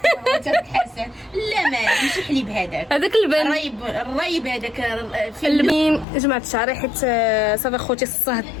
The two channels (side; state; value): right; drops out; at 6.1 s